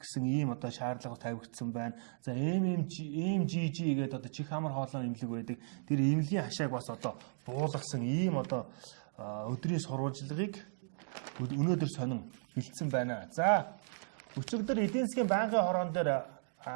гэсэн ийм одоо шаардлага тавигдсан байна. За MGG гэдэг одоо чих хамар хоолойн имлэг байдаг. Тэр имлэгийн хашааг бас одоо буулгасан ийм одоо өдрийн сурвалжлагыг өнөөдөр сонин бэлдсэн байна. За өчигдөр эдийн засгийн банкны хороон дээр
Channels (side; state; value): left; silent; digital silence